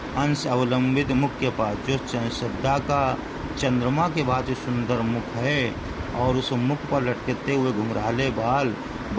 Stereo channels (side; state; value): both; identical; correlation 1.00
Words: अंश अवलंबित मुख के पास, जो श्रद्धा का चंद्रमा के बाद जो सुंदर मुख है और उस मुख पर लटकते हुए घुंघराले बाल